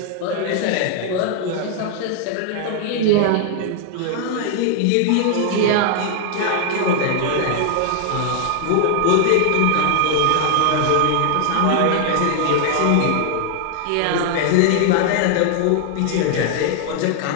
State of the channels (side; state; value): both; different; correlation 0.00